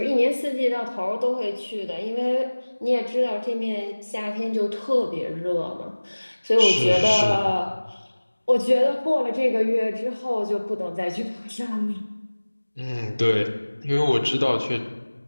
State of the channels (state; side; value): inverted; both; correlation -1.00